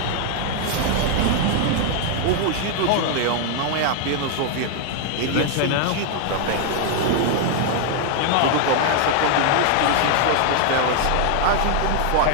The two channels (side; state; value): both; different; correlation 0.00